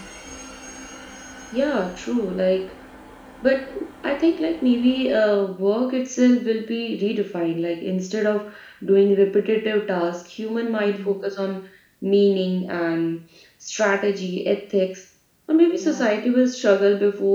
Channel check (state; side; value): identical; both; correlation 1.00